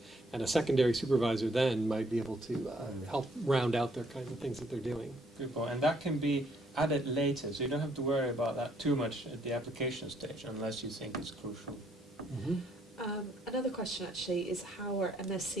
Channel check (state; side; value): normal; both; correlation 0.68